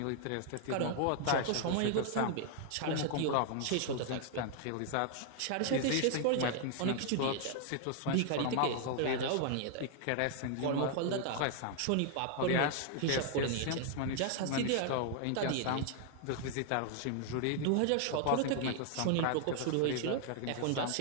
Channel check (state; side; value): different; both; correlation 0.00